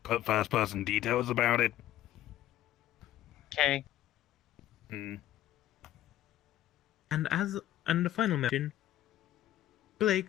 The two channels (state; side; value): quieter; right; 13.5 dB